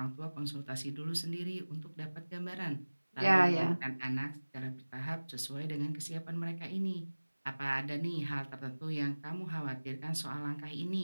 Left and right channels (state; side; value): inverted; both; correlation -1.00